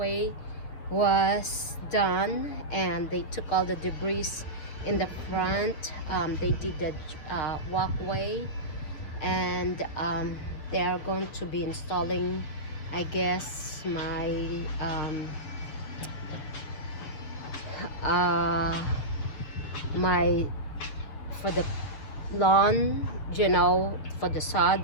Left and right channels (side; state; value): right; late; 6.7 ms